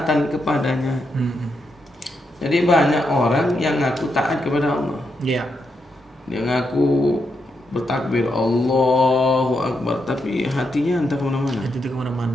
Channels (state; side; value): normal; both; correlation 0.82